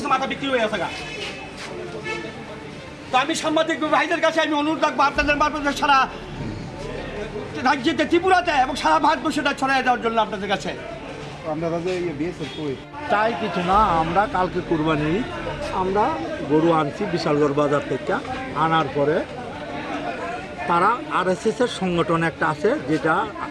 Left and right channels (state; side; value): identical; both; correlation 1.00